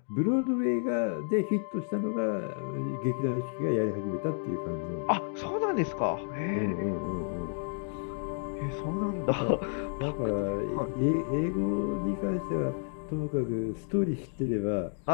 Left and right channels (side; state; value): right; silent; 57 dB below the other